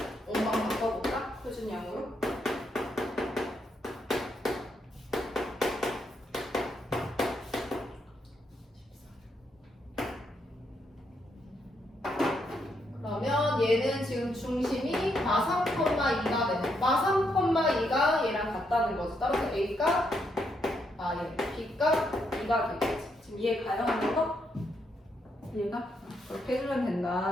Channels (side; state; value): both; normal; correlation 0.78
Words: 원방 바꿔볼까? 표준 양으로. 그러면 얘는 지금 중심이 마3,2가 되네. 마3,2가 얘랑 같다는 거지. 따라서 A가 얘 B가 2가 되겠지. 지금 이해 가요? 하는 거? 이해가? 그렇게 해주면